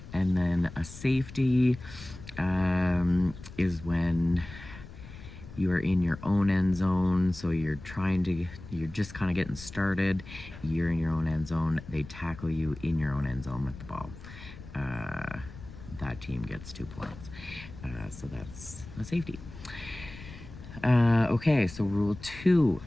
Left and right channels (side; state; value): left; noise; rumble, 15 dB below the sound